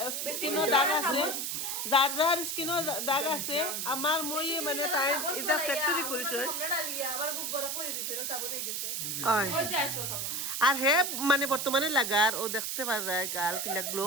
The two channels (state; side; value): noise; right; hiss, 2 dB below the sound